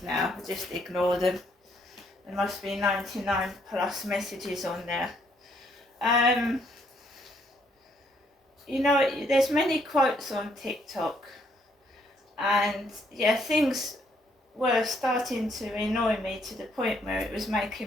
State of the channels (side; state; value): both; normal; correlation 0.70